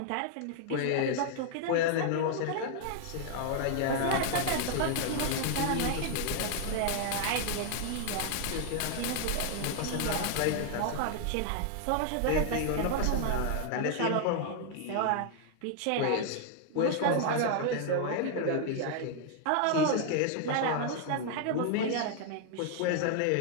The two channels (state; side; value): different; both; correlation 0.00